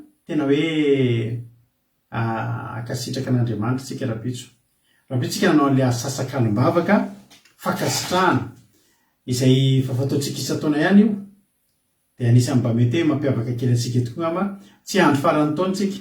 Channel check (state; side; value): identical; both; correlation 1.00